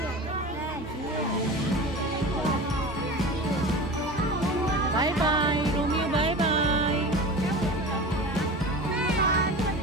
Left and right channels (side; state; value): both; normal; correlation 0.33